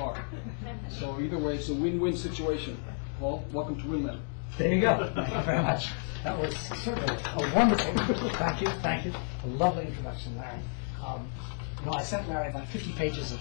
So either way, it's a win-win situation. Paul, welcome to WinLab. There you go. Thank you very much. That was certainly a wonderful, thank you. A lovely introduction, Larry. I sent Larry about 50 pages of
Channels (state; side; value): silent; right; 57 dB below the other